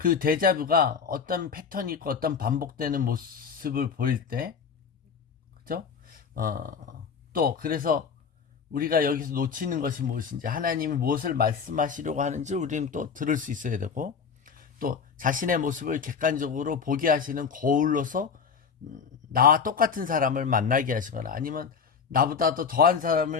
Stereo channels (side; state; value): right; quieter; 6.2 dB